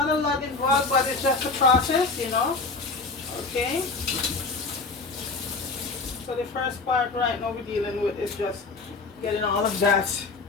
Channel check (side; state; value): right; quieter; 4.0 dB